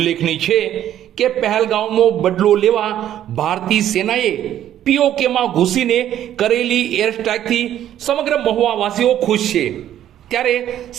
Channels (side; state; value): left; quieter; 11.4 dB